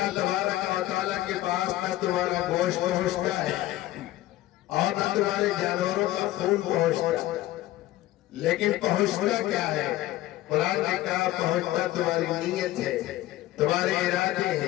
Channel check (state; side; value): quieter; right; 15.5 dB